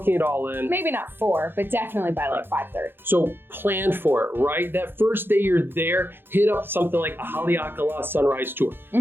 it all in. Maybe not 4, but definitely by like 5:30. So plan for it, right? That first day you're there, hit up something like a Haleakala sunrise tour,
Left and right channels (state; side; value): late; left; 0.10 ms